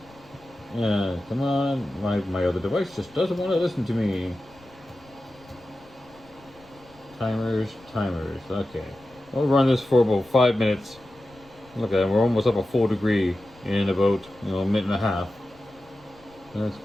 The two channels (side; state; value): left; noise; rumble, 27 dB below the sound